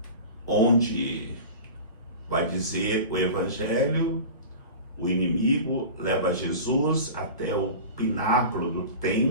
onde vai dizer o Evangelho, o inimigo leva Jesus até o pináculo do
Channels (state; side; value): inverted; both; correlation -0.34